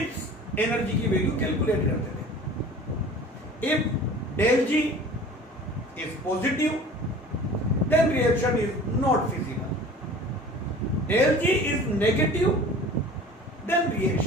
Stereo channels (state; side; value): normal; both; correlation 0.43